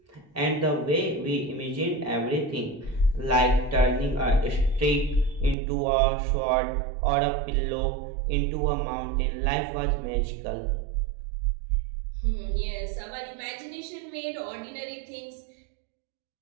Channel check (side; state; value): left; drops out; at 5.6 s